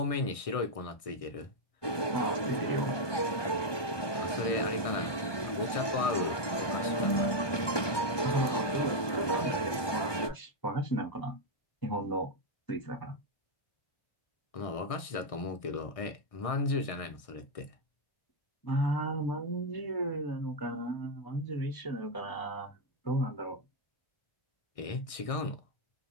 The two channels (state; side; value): late; right; 1.2 ms